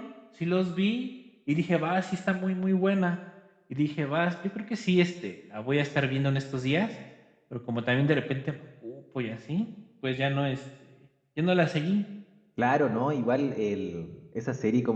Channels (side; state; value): both; identical; correlation 1.00